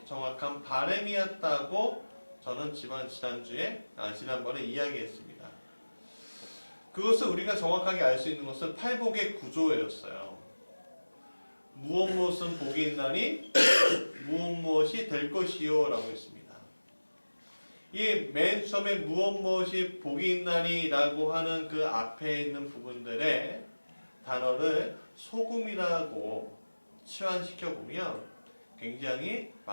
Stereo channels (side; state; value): both; inverted; correlation -1.00